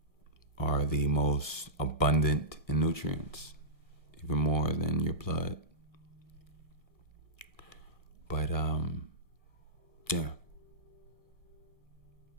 are the most abundant in nutrients, even more than your blood. But, yeah.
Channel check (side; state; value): right; late; 1.2 ms